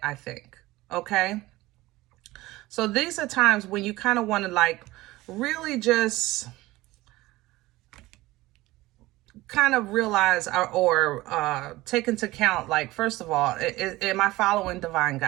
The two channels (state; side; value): quieter; left; 18.7 dB